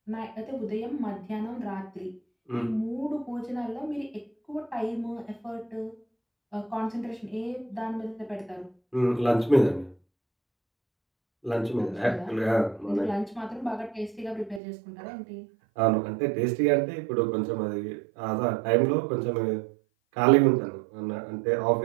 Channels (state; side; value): drops out; left; at 14.6 s